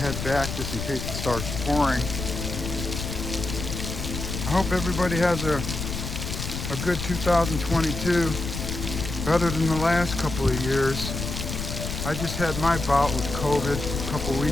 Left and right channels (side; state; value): left; noise; rumble, 5 dB below the sound